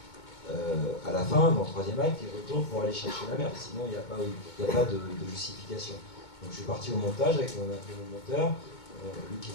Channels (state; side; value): late; right; 2.2 ms